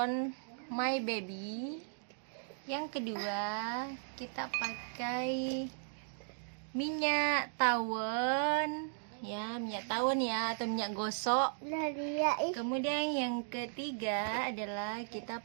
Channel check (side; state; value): left; silent; digital silence